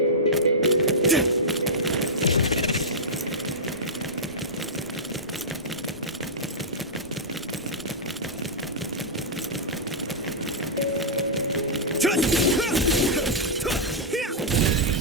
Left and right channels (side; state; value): both; normal; correlation -0.10